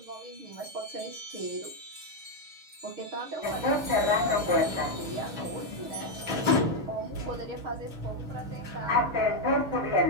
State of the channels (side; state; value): left; late; 6.2 ms